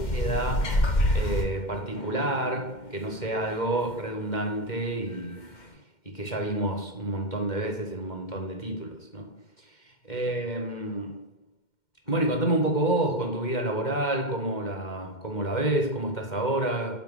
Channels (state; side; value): late; right; 2.1 ms